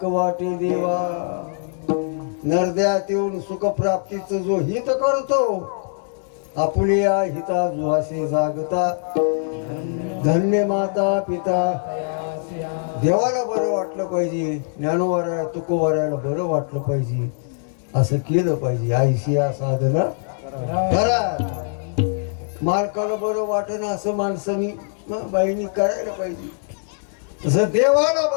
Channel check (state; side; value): silent; right; digital silence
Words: वाटे देवा नरद्यात येऊन सुखप्राप्तीचं जो हित करतो आपल्या हिता जुहासे जागता धन्य माता पिता देवाला बरं वाटलं पाहिजे ज्ञानोवाऱ्याला तुकोवाऱ्याला बरं वाटलं पाहिजे असं केलं पाहिजे आईशी या साधना करा मालकाला बरं वाटेना असं माणसानी मग बाईंनी करायला पाहिजे. तसं देवाला